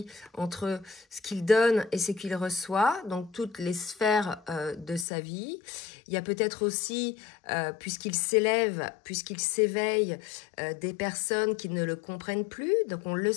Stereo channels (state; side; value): drops out; right; at 5.1 s